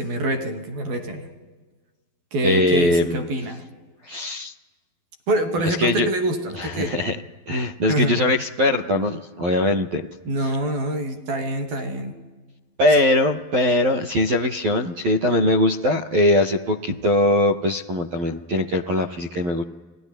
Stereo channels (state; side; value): late; left; 12 ms